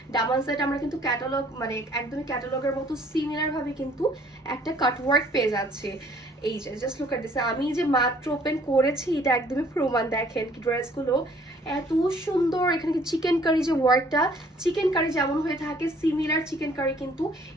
দামান সাইডে আমরা কিন্তু ক্যাটালগ, মানে একদমই ক্যাটালগের মতো সিমিলার ভাবে কিন্তু একটা কাটওয়ার্ক পেয়ে যাচ্ছে। এই যে জাস্ট লুক এট দিস, আমি যে মাত্র ওপেন করেছি এটা একদমই প্রমাণ। দেখেন কি ড্রেসগুলো এত সুন্দর। এখানে কি চিকেন কারি যে ওয়ার্কটা, চিকেন কারি যেমন হয়ে থাকে সিমিলার চিকেন কারি কিন্তু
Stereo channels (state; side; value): normal; both; correlation 0.59